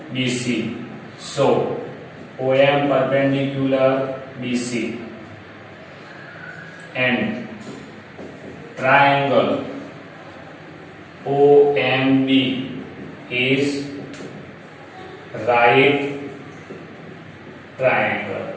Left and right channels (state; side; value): identical; both; correlation 1.00